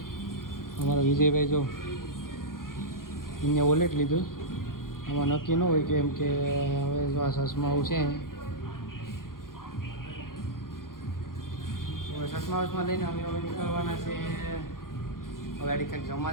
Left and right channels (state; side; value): late; right; 0.91 ms